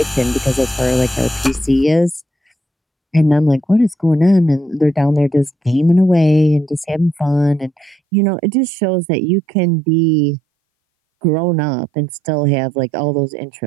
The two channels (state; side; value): drops out; left; at 8.0 s